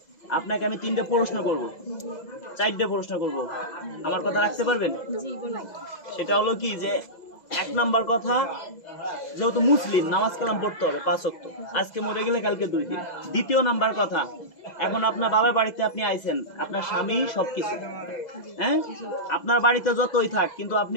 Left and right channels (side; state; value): right; late; 2.0 ms